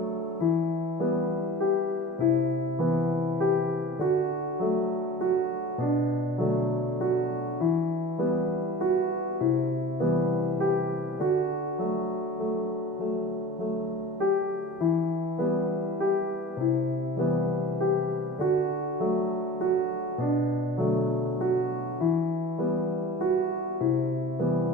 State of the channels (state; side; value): normal; both; correlation 0.40